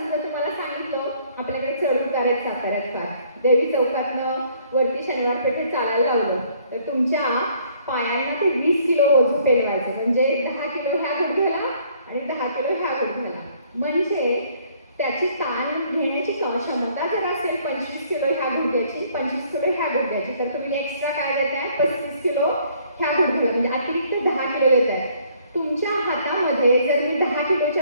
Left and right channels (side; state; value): both; inverted; correlation -0.62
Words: तुम्हाला सांगितलं आपल्याकडे चढ उतार आहेत साताऱ्यात फार, देवी चौकातनं वरती शनिवार पेठेत चालायला लावलं तर तुमच्या पायांना ते 20 किलो ओझं पेलवायचं. म्हणजे 10 किलो ह्या गुडघ्याला आणि 10 किलो ह्या गुडघ्याला. म्हणजे त्याची ताण घेण्याची क्षमता जर असेल 25 किलो ह्या गुडघ्याची, 25 किलो ह्या गुडघ्याची, तर तुम्ही एक्स्ट्रा काय देताय 35 किलो ह्या गुडघ्याला, म्हणजे अतिरिक्त 10 किलो देताय. तुमच्या हातामध्ये जर मी 10 किलोच्या